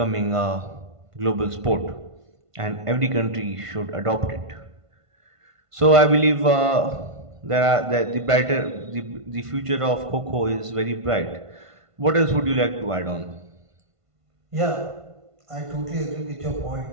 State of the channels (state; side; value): late; left; 1.5 ms